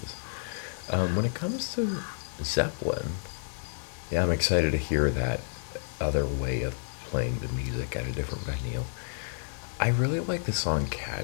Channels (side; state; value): right; silent; digital silence